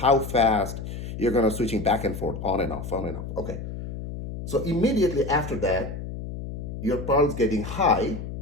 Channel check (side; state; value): left; noise; hum, 8 dB below the sound